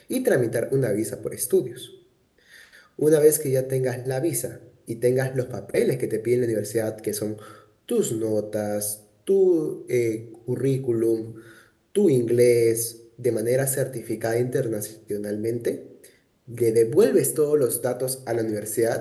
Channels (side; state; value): both; identical; correlation 1.00